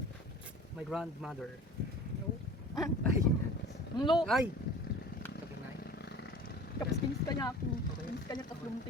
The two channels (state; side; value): normal; both; correlation 0.41